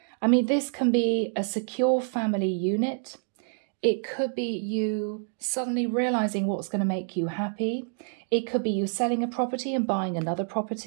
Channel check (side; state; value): left; silent; 56 dB below the other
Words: I mean, this can be a secure family unit. It could be you suddenly realizing what's going to make you happy. It could be you selling a property and buying another